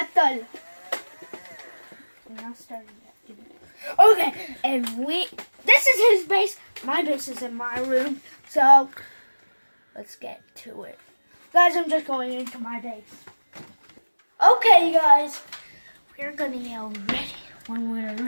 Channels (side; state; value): both; inverted; correlation -1.00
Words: We're not starting yet. Okay, and this is his base. My base is in my room, so let's get to it. Guys, I'm just going into my base. Okay, guys, we're gonna yell ready when we're